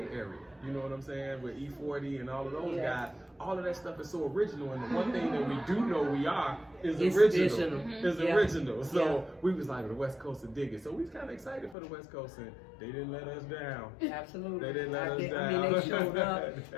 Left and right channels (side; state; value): right; drops out; at 11.8 s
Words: Area. You know what I'm saying? With E40 and all of those guys, all of that stuff is so original. And the one thing that we do know we are is original. Original. So we was like, the West Coast will dig it. So we was kind of excited for the West Coast, and they didn't let us down. Absolutely. They didn't let us down. I mean, they showed up.